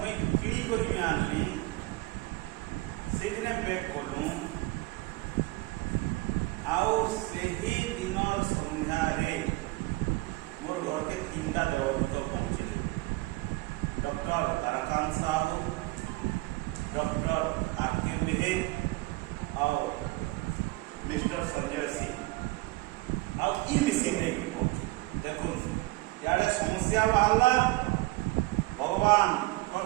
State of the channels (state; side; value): quieter; left; 21.4 dB